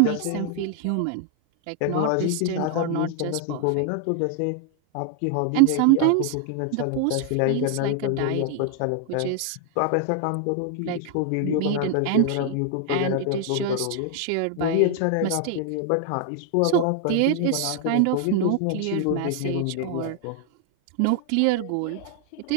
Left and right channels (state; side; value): different; both; correlation 0.00